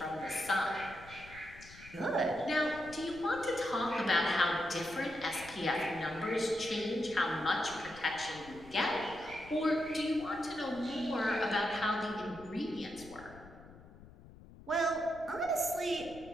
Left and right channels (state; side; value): noise; left; rumble, 19 dB below the sound